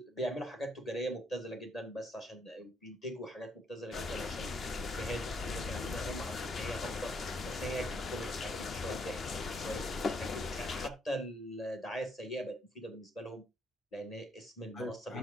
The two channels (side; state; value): both; normal; correlation 0.72